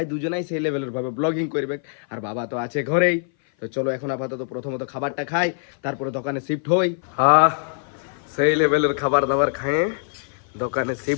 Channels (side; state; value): right; silent; 57 dB below the other